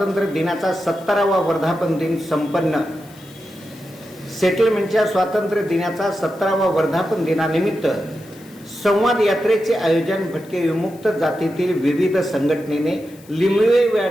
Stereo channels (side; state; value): left; noise; hiss, 25 dB below the sound